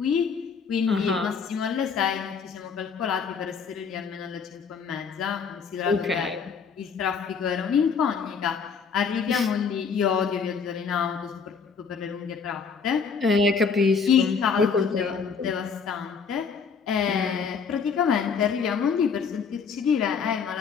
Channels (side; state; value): right; quieter; 5.9 dB